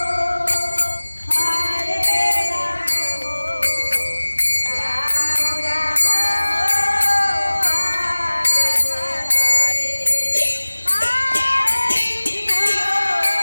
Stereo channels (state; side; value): inverted; both; correlation -1.00